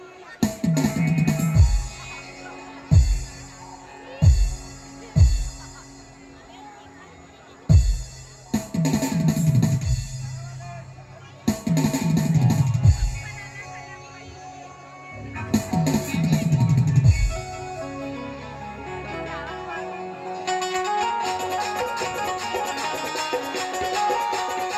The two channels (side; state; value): both; identical; correlation 1.00